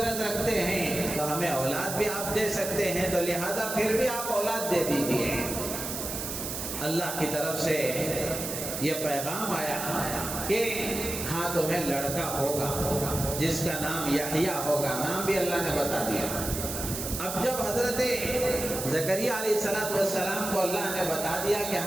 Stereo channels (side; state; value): right; noise; hiss, 5 dB below the sound